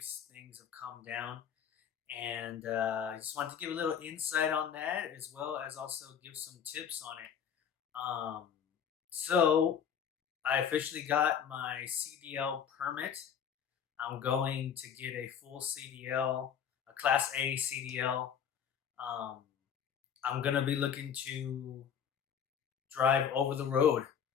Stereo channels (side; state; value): right; quieter; 8.1 dB